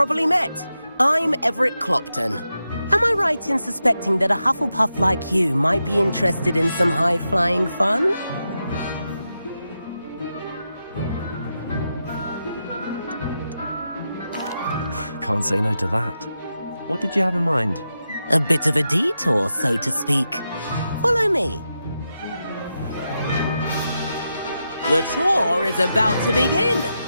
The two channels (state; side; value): inverted; both; correlation -0.88